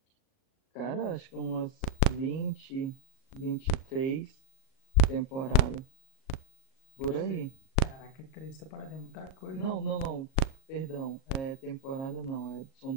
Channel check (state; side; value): late; right; 38 ms